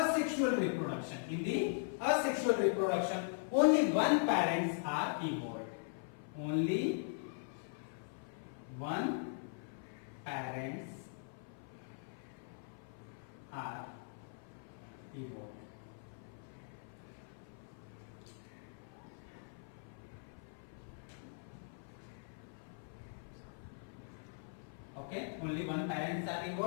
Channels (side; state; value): right; silent; 51 dB below the other